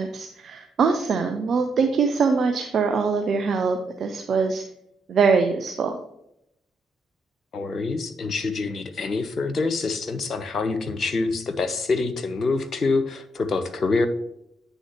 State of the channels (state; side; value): normal; both; correlation 0.76